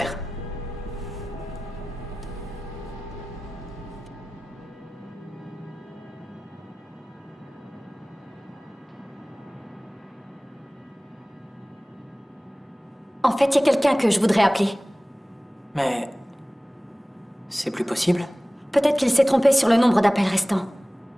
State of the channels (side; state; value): both; normal; correlation 0.98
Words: En fait, il y a quelqu'un que je voudrais appeler. Mais... c'est plus possible? Peut-être qu'il s'est trompé sur le nombre d'appels restants.